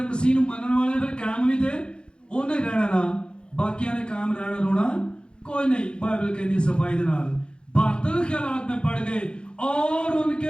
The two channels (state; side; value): late; right; 0.052 ms